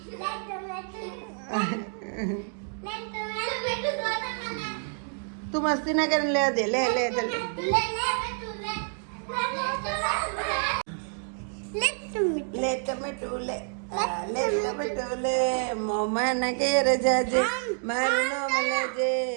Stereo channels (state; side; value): silent; left; 59 dB below the other